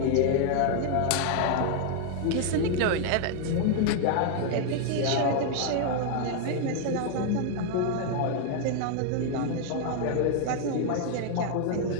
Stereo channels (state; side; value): different; both; correlation 0.00